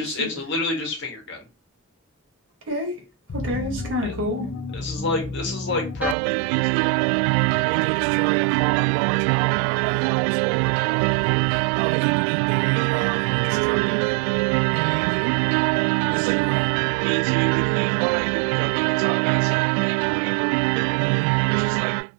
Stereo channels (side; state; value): left; drops out; at 6.2 s